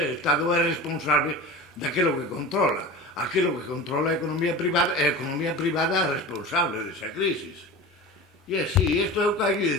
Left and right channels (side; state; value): both; normal; correlation 0.32